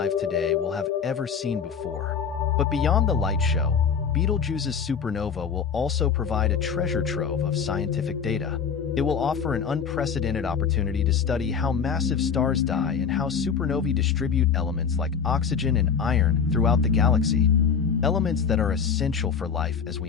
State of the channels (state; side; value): quieter; right; 6.6 dB